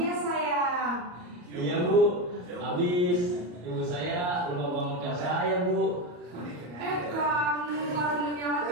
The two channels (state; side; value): late; left; 34 ms